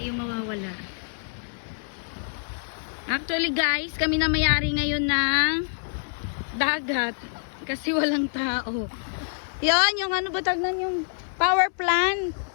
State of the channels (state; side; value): silent; right; 61 dB below the other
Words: yung mawawala. Actually guys, kami na may-ari ngayon ng dagat kasi walang tao. Yan, yung ano ba tagnan yung power plant.